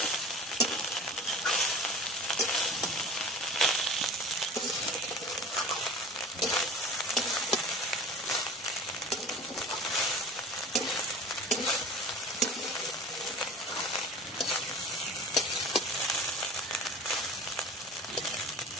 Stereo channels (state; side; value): normal; both; correlation 0.40